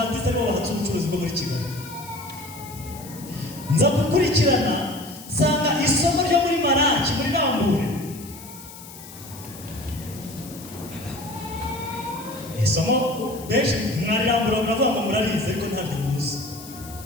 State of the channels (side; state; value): left; noise; hiss, 16 dB below the sound